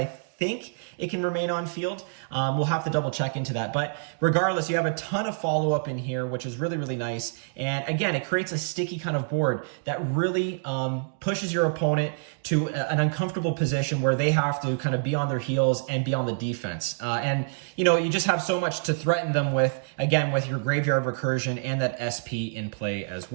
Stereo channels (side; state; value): left; silent; digital silence